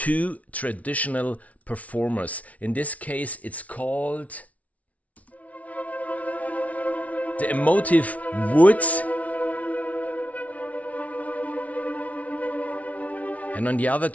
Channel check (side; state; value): right; late; 0.068 ms